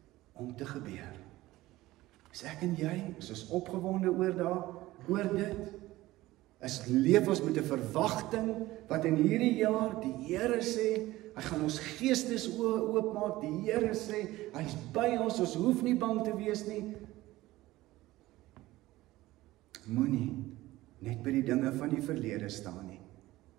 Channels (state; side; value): quieter; left; 17.5 dB